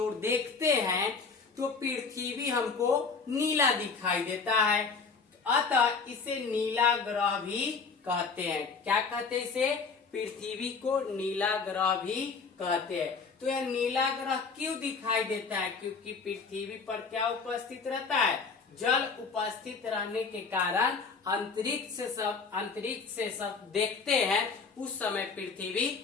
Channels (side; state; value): right; quieter; 4.9 dB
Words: देखते हैं तो पृथ्वी हमको नीला दिखाई देता है, अतः इसे नीला ग्रह भी कहते हैं। क्या कहते हैं इसे? पृथ्वी को नीला ग्रह भी कहते हैं। तो यह नीला ग्रह क्यों दिखाई देता है? क्योंकि पृथ्वी पर क्या उपस्थित रहता है? जल उपस्थित रहने के कारण अंतरिक्ष से सब देखते हैं, उस समय